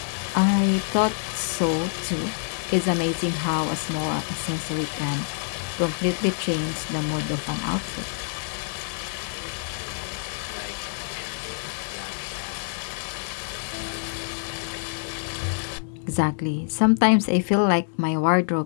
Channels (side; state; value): right; silent; digital silence